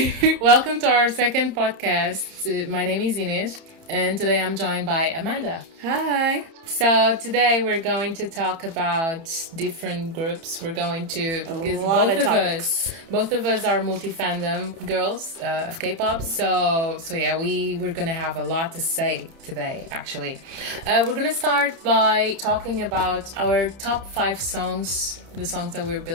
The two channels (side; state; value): left; late; 30 ms